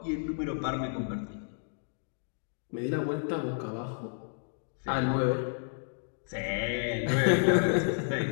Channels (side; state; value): right; silent; digital silence